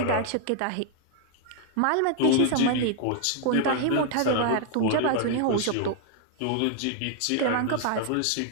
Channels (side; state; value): both; different; correlation 0.00